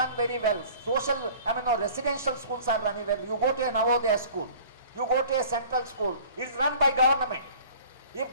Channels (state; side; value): inverted; both; correlation -0.47